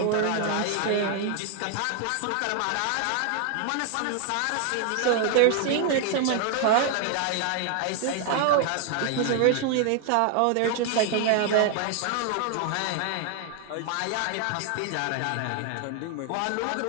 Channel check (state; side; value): different; both; correlation 0.00